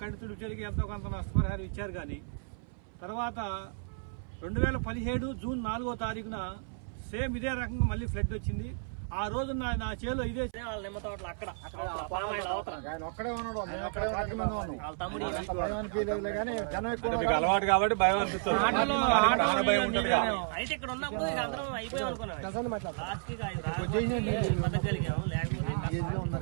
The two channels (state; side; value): silent; left; 56 dB below the other